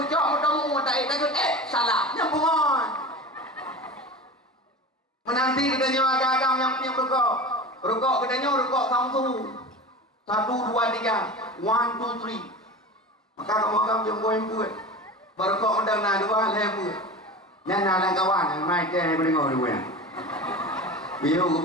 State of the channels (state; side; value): normal; both; correlation 0.31